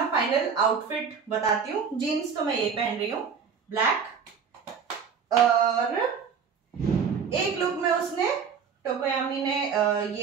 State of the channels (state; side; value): quieter; left; 6.5 dB